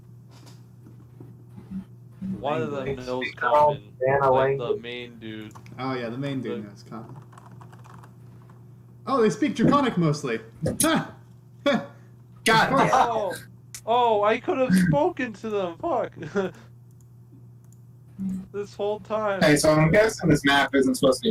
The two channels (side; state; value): both; identical; correlation 1.00